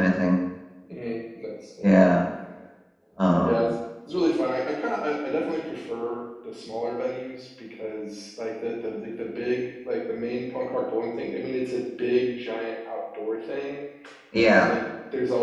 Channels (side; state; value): both; identical; correlation 1.00